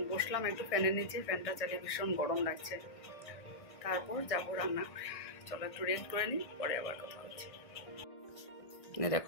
বসলাম একটু ফ্যানের নিচে, ফ্যানটা চালিয়ে ভীষণ গরম লাগছে। তারপর যাবো রান্না করে। চলো একটু রেস্ট করে নিই, পরে আবার কথা হচ্ছে।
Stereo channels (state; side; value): late; right; 1.6 ms